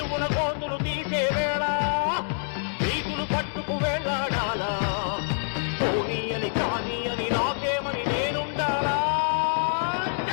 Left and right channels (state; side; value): silent; right; 56 dB below the other